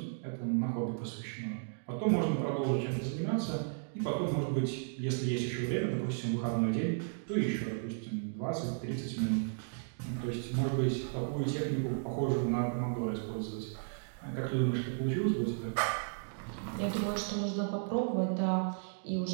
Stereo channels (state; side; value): silent; left; digital silence